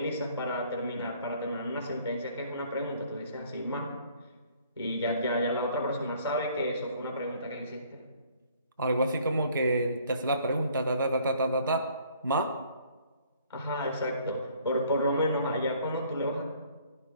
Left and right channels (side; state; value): both; inverted; correlation -0.59